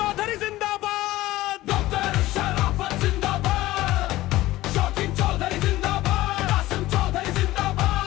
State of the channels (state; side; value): quieter; right; 16.9 dB